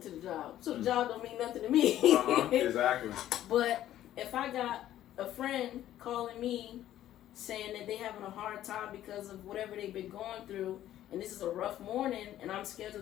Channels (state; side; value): quieter; right; 12.6 dB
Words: to the job. So the job don't mean nothing to me. Exactly. But if I got a friend calling me saying that they having a hard time because of whatever they've been going through, and this is a rough morning, and I'm